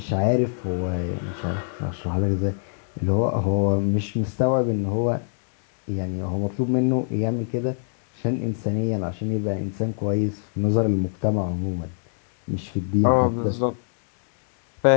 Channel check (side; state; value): right; silent; digital silence